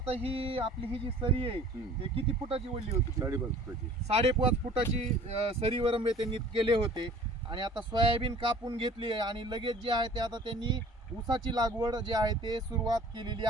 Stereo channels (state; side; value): normal; both; correlation 0.49